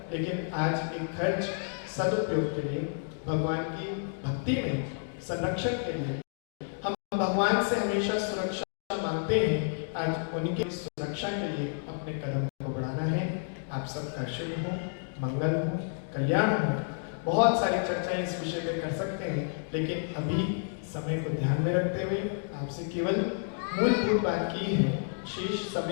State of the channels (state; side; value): silent; right; digital silence